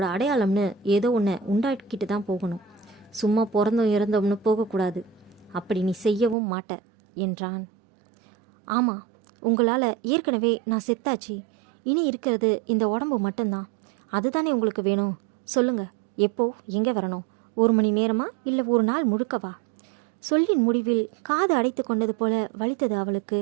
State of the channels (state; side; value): drops out; left; at 6.4 s